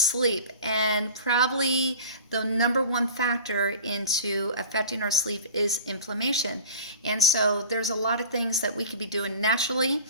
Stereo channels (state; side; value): inverted; both; correlation -0.38